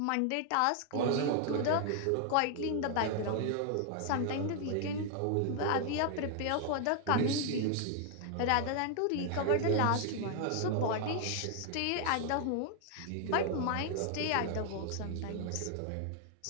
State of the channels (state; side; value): different; both; correlation 0.00